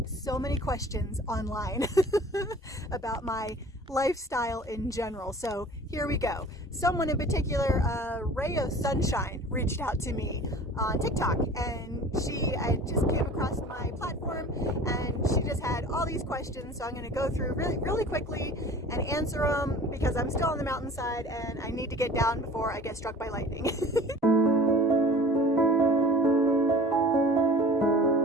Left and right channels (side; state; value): both; normal; correlation 0.43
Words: so many questions online about my lifestyle in general. So here we go. Someone in particular, Ray of Sunshine, reached out to me on TikTok, and I just came across my platform, and she just had all these questions. So I'm going to go through really quickly and answer them because I'm still on the mountainside and I need to get down before I get struck by lightning.